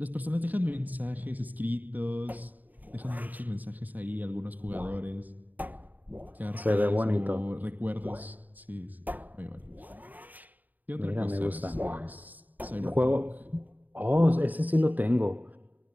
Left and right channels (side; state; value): left; late; 0.083 ms